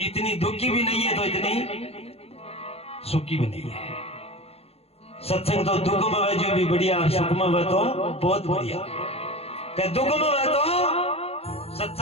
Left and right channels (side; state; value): right; late; 0.29 ms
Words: इतनी दुखी भी नहीं है तो इतनी सुखी भी नहीं है। सत्संग तो दुख में वह जो भी बढ़िया, सुख में वह तो बहुत बढ़िया। दुख में वह तो